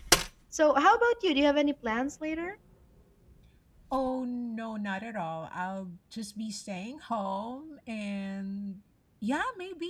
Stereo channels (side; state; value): both; identical; correlation 1.00